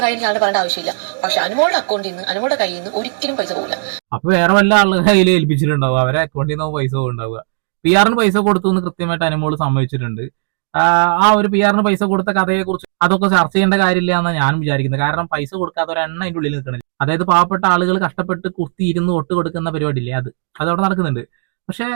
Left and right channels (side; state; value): left; silent; 61 dB below the other